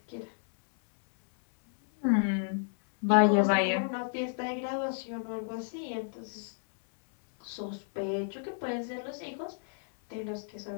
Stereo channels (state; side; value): silent; right; 57 dB below the other